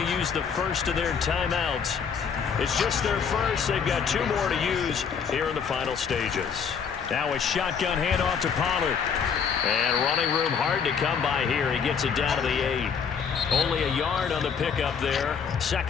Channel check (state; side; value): quieter; right; 6.6 dB